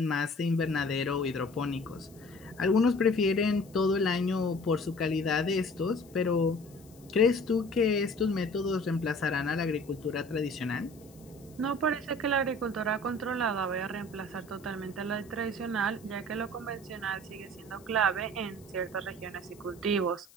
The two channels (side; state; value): left; noise; hiss, 26 dB below the sound